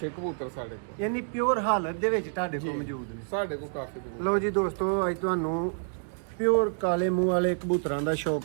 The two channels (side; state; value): left; silent; digital silence